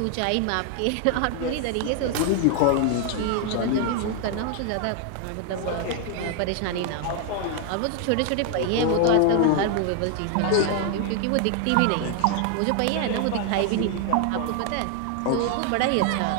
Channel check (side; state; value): both; different; correlation 0.00